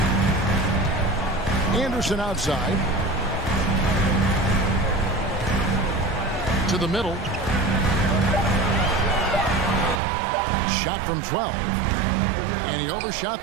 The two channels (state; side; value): drops out; left; at 10.0 s